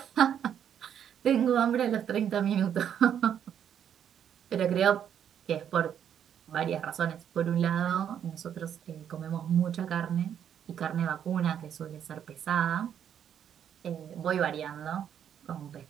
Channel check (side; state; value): left; quieter; 9.1 dB